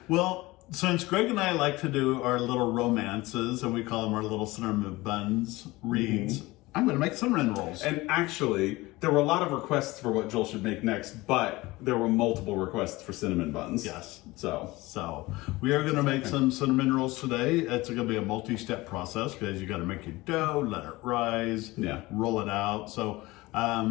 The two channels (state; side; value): quieter; right; 20.5 dB